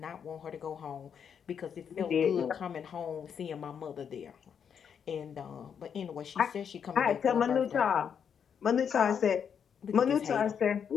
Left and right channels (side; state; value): right; quieter; 7.5 dB